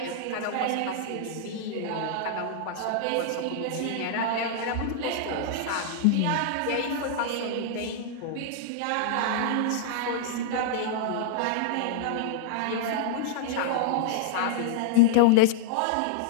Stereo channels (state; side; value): different; both; correlation -0.01